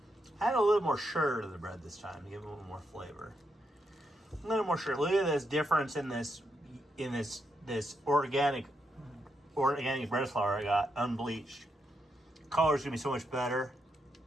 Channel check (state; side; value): normal; both; correlation 0.82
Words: Add a little more sugar to the bread this time to give it a little more flavor. A little more sugar. Look at this difference in this organic bread flour I got, unbleached. Color's going to be so much better.